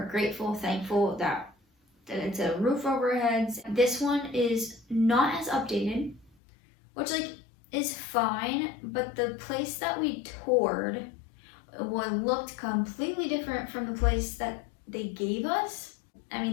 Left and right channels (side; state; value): right; drops out; at 6.3 s